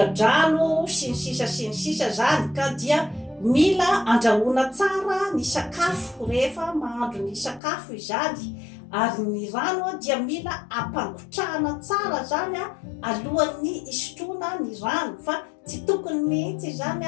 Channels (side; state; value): right; drops out; at 7.6 s